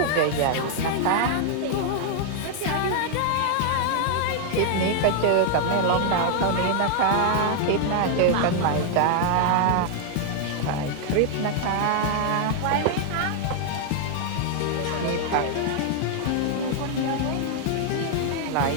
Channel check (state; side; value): different; both; correlation 0.00